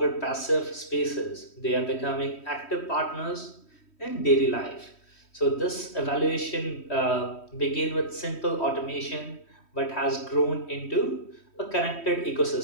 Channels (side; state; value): right; late; 3.1 ms